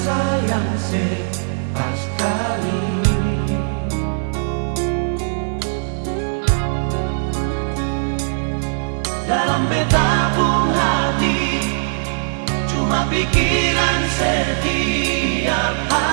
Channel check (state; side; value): silent; left; 61 dB below the other